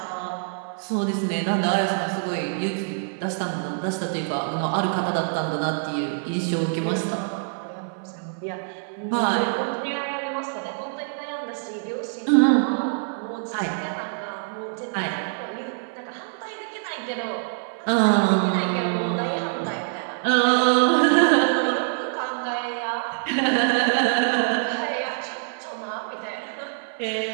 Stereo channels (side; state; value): left; silent; 62 dB below the other